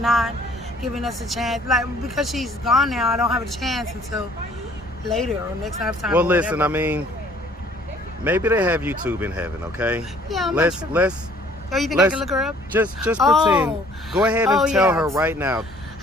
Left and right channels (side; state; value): both; normal; correlation 0.57